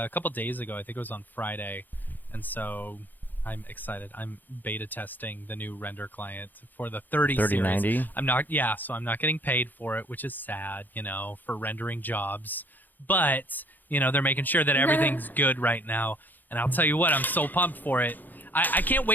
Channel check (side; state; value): right; late; 0.087 ms